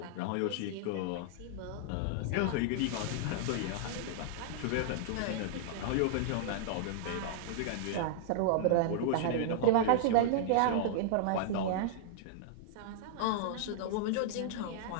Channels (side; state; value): both; different; correlation -0.01